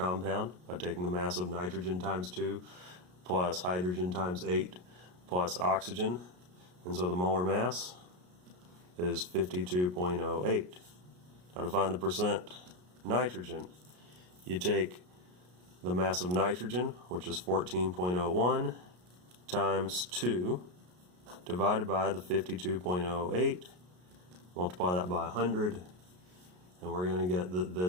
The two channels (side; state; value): left; late; 33 ms